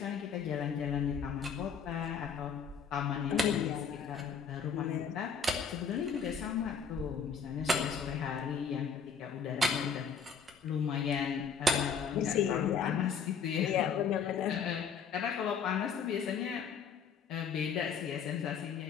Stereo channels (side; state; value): right; quieter; 6.1 dB